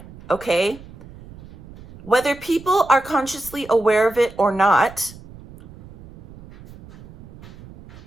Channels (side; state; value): right; noise; rumble, 20 dB below the sound